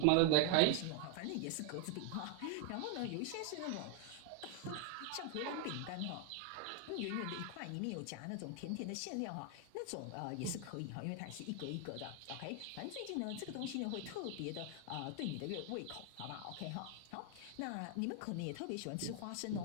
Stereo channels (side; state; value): both; different; correlation 0.00